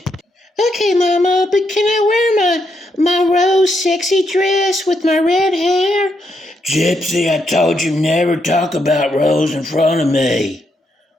Okay, Mama, but can I wear my rose sexy dress with my red hair? Gypsy, I told you never talk about Rose in front of me.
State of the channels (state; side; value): normal; both; correlation 0.79